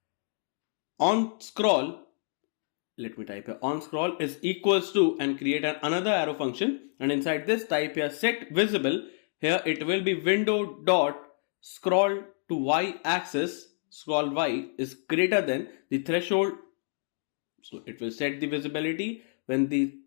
on scroll. Let me type here on scroll is equals to, and create another arrow function, and inside this type here set visible. Here it will be window dot scroll to y axis, scroll y is greater than the threshold. So it will set the visibility when the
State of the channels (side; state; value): right; silent; digital silence